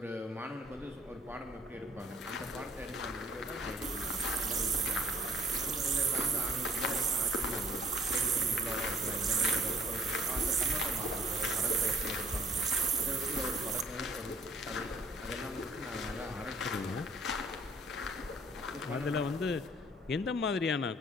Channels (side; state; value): both; normal; correlation 0.58